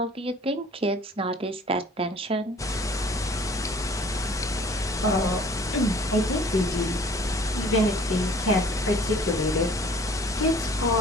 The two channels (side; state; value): both; normal; correlation 0.51